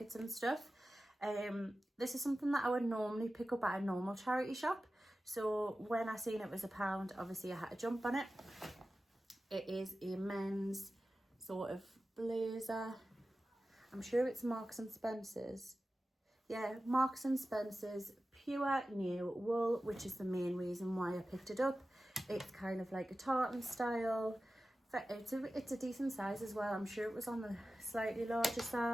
and stuff. This is something that I would normally pick up at a normal charity shop. So when I seen it was £1, obviously I had to jump on it. It is a men's sort of blazer. I'm sure it's Marks and Spencer's. Yeah, Marks and Spencer's pure new wool, which is the main reason why I picked it up. It's kind of like a tartan style. It's a decent size as well. I'm sure it was on the slightly larger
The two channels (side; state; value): both; normal; correlation 0.94